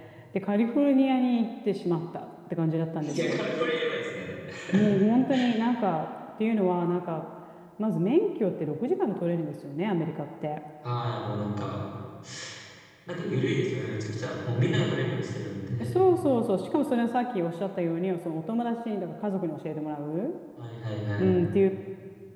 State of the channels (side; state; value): both; identical; correlation 1.00